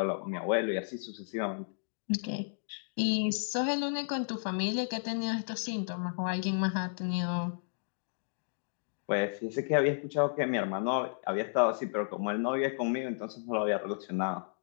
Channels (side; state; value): right; silent; digital silence